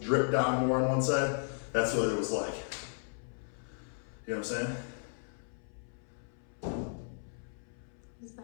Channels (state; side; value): silent; right; 54 dB below the other